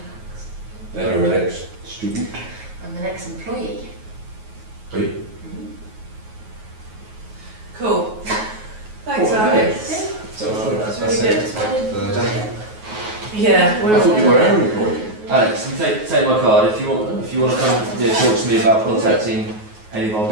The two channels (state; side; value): late; left; 9.4 ms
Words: Then you're an ex-student. I'm an ex-employee. Are you? Cool. Thanks, Cool. Alex. So That's really good. it. Yeah, I thought you were our employee. Alex, you take my card if you want. If you want to come, talk to me about contacting any of our